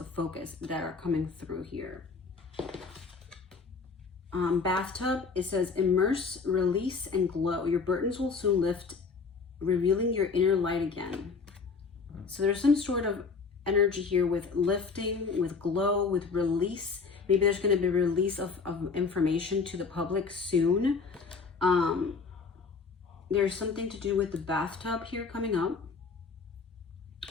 focus that are coming through here. Bathtub, it says, immerse, release, and glow. Your burdens will soon lift, revealing your inner light again. So there's some sort of energy here with lifting, with glow, with release. Maybe there's going to be a release of information to the public soon. There's something to do with the bathtub here coming up,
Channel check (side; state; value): right; quieter; 4.9 dB